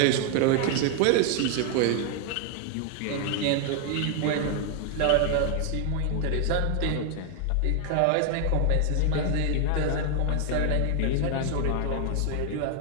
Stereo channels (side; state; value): both; different; correlation 0.00